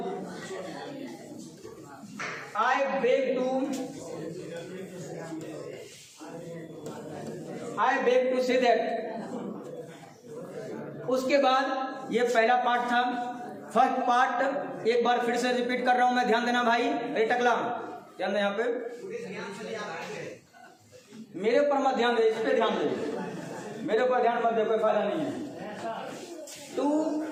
I beg to say that. उसके बाद ये पहला पार्ट था, फर्स्ट पार्ट एक बार फिर से रिपीट कर रहा हूं मैं, ध्यान देना भाई, अरे टकला ध्यान दे, यहाँ पे मेरे ऊपर मत ध्यान दे, इस पे ध्यान दे, मेरे ऊपर ध्यान मत दे, कोई फायदा नहीं है। टू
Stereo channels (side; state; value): both; identical; correlation 1.00